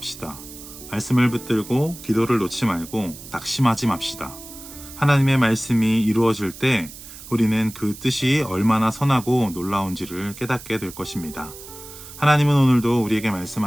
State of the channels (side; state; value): right; noise; hiss, 15 dB below the sound